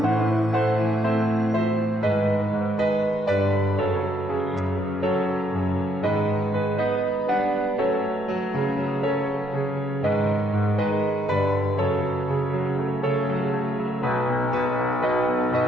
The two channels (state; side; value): normal; both; correlation 0.72